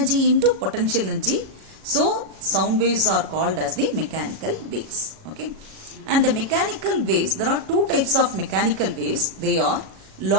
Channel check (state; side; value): late; left; 37 ms